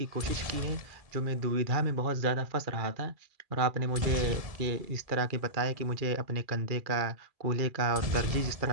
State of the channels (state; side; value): late; left; 2.4 ms